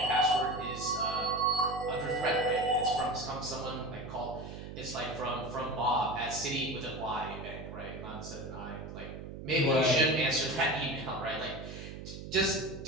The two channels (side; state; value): right; noise; hum, 10 dB below the sound